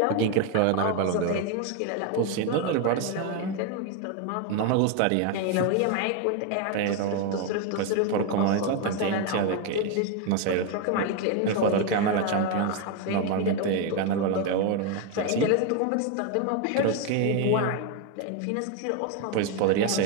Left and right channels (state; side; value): different; both; correlation 0.01